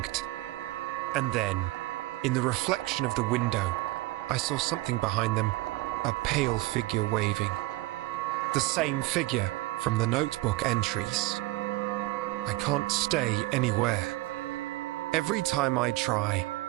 And then, in the reflection of the window, I saw something behind them, a pale figure waving. The same figure from the notebook entries. I can't stay anywhere. Every time I try,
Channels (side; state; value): left; quieter; 19.5 dB